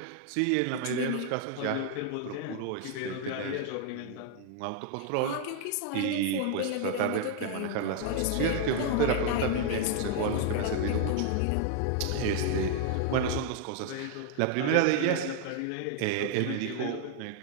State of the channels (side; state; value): both; different; correlation 0.00